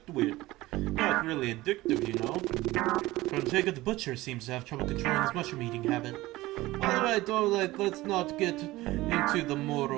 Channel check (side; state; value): left; quieter; 18.4 dB